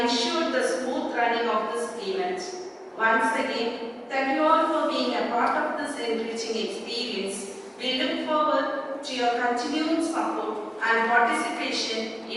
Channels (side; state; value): both; identical; correlation 1.00